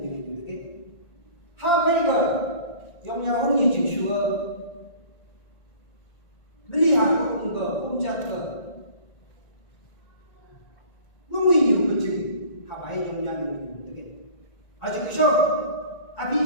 tu, okay? Apa ke? Yang orang ni jeng suka, melihat orang ke, puncak ke. Mungkin you 아직 그죠?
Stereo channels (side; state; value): right; late; 1.8 ms